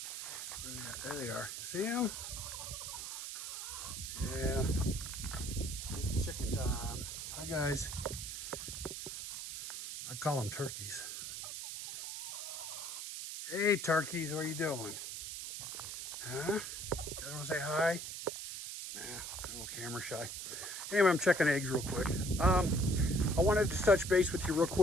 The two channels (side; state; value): right; noise; hiss, 6 dB below the sound